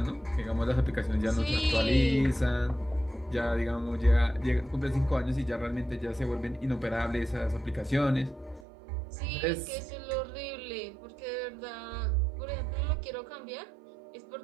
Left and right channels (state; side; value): drops out; left; at 8.7 s